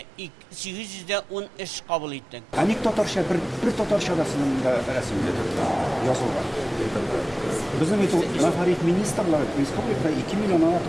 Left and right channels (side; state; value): both; normal; correlation 0.96